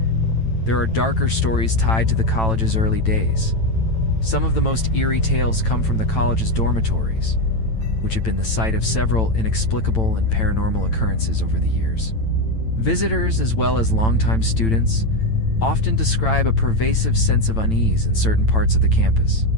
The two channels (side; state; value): right; late; 9.0 ms